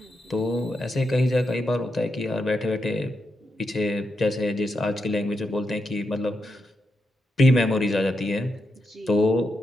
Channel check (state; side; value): normal; both; correlation 0.85